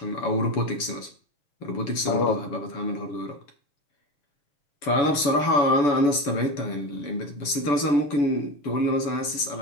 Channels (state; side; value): late; right; 7.0 ms